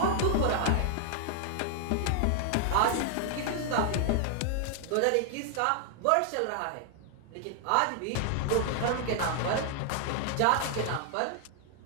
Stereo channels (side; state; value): both; different; correlation 0.00